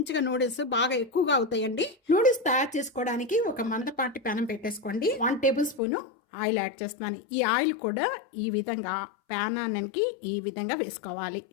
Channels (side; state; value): right; drops out; at 5.8 s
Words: నూడిల్స్ బాగా ఎక్కువగా అవుతాయండి. నూడిల్స్ తయారు చేసుకోవడానికి ఒక మందపాటి ప్యానం పెట్టేసుకోండి. 1 టేబుల్ స్పూను ఆయిల్ యాడ్ చేస్తున్నాను. ఈ ఆయిల్ కూడా ఈ విధంగా ప్యానానికి ఈ విధంగా వేసుకోవాలి.